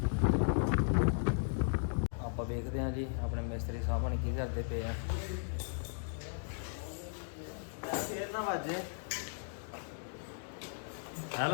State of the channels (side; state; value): right; silent; digital silence